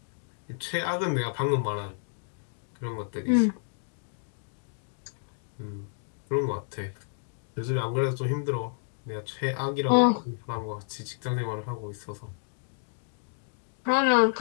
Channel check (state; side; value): silent; right; digital silence